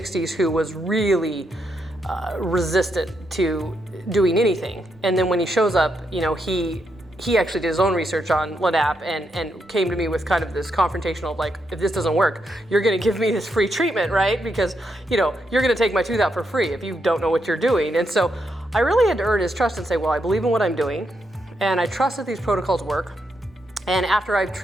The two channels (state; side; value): normal; both; correlation 0.81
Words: who was really resistant to doing anything. And then when he shows up, you know, he actually did his own research on LANAP and came to me with kind of this confrontational, like, if this doesn't work, you're gonna give me this free treatment, right? Because, you know, you're gonna take my tooth out for free if you don't know what you're doing. And so I really had to earn his trust and say, well, I believe in what I'm doing, and I trust that these protocols work. And after I've